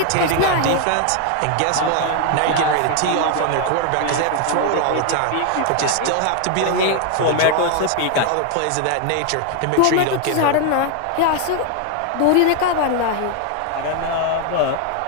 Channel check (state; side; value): different; both; correlation 0.00